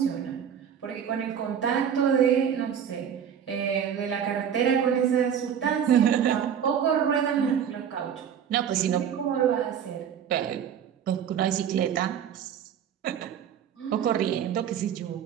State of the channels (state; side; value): quieter; left; 8.5 dB